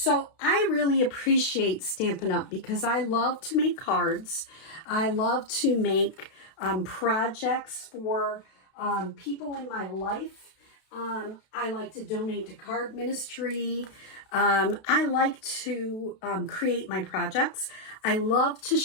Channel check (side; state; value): right; late; 32 ms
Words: I really appreciate Stampin' Up! Because I love to make cards. I love to make projects for people in my life. I like to donate to card ministry. I like to create my projects. I love to